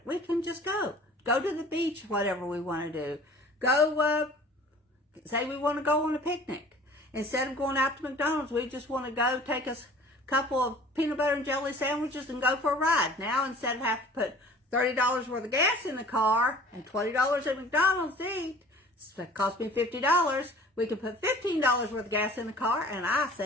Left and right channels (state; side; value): normal; both; correlation 0.47